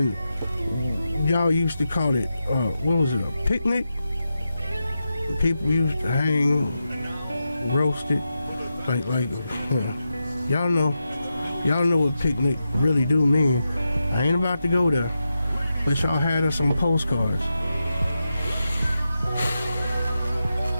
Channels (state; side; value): inverted; both; correlation -0.89